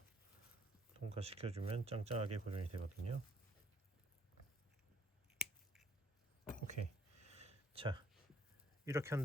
통과시켜주면 짱짱하게 고정이 되거든요. 오케이. 자, 이렇게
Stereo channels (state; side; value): normal; both; correlation 0.66